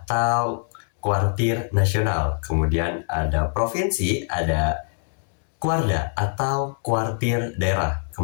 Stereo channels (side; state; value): right; silent; 63 dB below the other